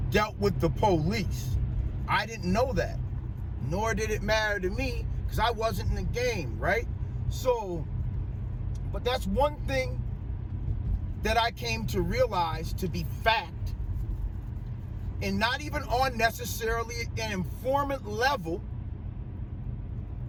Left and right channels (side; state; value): both; identical; correlation 1.00